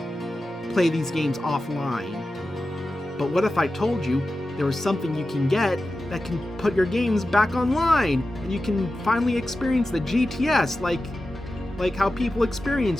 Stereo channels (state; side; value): normal; both; correlation 0.93